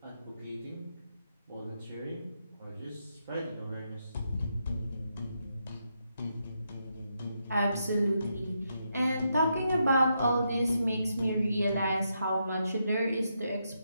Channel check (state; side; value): inverted; both; correlation -0.81